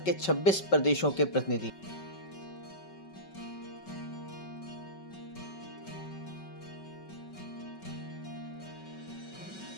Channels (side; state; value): right; late; 5.3 ms